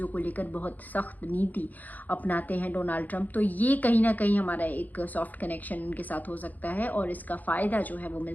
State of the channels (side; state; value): right; late; 0.081 ms